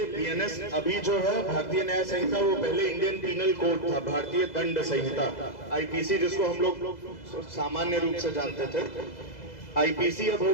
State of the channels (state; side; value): late; right; 2.0 ms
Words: BNS अभी जो है भारतीय न्याय संहिता, वो पहले इंडियन पीनल कोड था, भारतीय दंड संहिता IPC, जिसको हम लोग सामान्य रूप से जानते थे। IPC अब